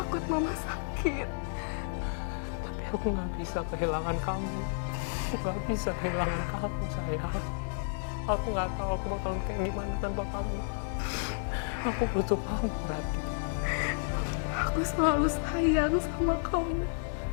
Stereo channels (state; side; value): silent; right; digital silence